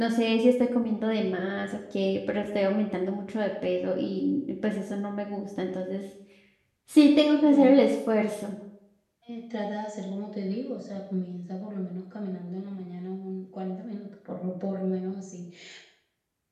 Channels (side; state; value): both; identical; correlation 1.00